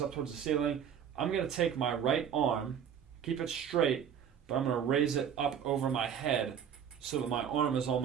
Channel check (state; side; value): quieter; left; 8.4 dB